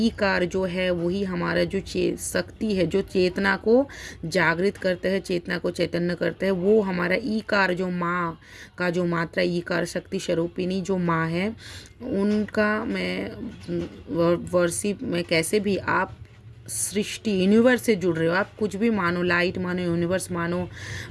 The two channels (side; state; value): both; identical; correlation 1.00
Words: कार जो है वही हमारा जो शक्ति है, जो चेतना को जागृत करते हैं, चेतना को चैतन्य करते हैं, वो हमारा ई कार, जो माँ का जो मात्रा, ई कार शक्ति स्वरूपिणी जो माँ है, उनका मैं वर्शिप में कैसे भी आप सृष्टि यूनिवर्स से जुड़ रहे हो, आप कुछ भी मानो, लाइट मानो, यूनिवर्स मानो,